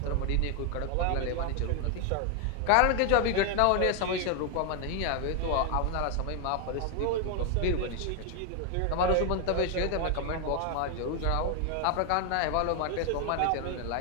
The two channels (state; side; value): different; both; correlation 0.01